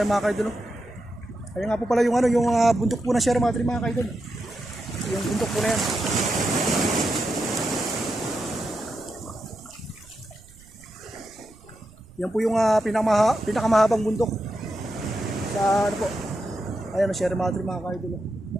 mga kaidol, oh. Ayun nga po pala yung ano, yung bundok po na Sierra Madre mga kaidol. Yung bundok po na yan. Yan po yung pinakamahabang bundok sa ano po. Ayan, Sierra Madre mga kaidol.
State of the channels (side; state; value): right; noise; rumble, 24 dB below the sound